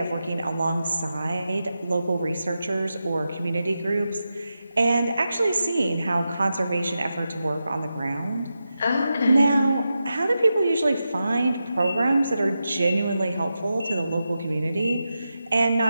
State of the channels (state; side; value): inverted; both; correlation -0.90